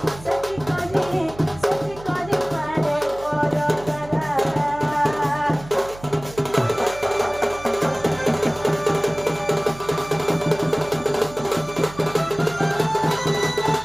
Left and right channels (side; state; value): right; noise; hum, 17 dB below the sound